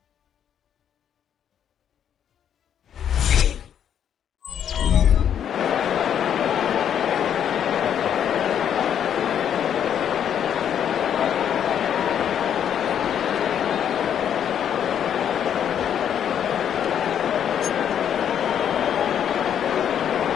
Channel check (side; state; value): right; quieter; 9.1 dB